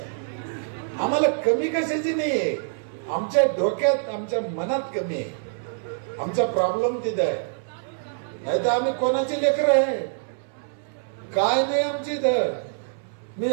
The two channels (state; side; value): silent; left; 62 dB below the other